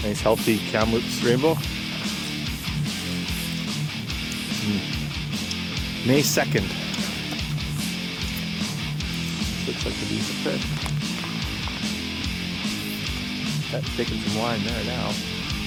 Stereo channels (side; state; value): both; identical; correlation 1.00